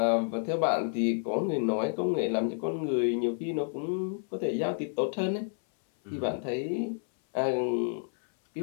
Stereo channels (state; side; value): silent; right; 58 dB below the other